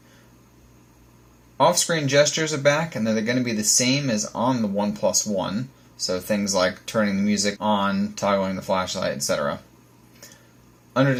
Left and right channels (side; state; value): both; identical; correlation 1.00